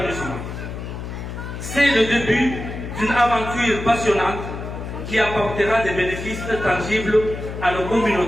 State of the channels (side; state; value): left; noise; hum, 8 dB below the sound